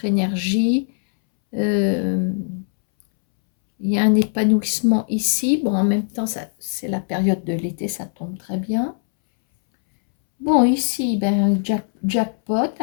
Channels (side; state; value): right; silent; 65 dB below the other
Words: énergie. Il y a un épanouissement ici. Bon, en même temps, c'est la période de l'été, ça tombe très bien. Bon, ici, ben, jackpot.